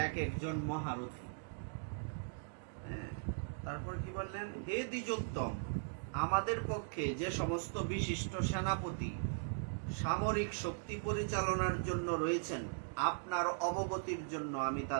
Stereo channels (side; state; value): left; silent; digital silence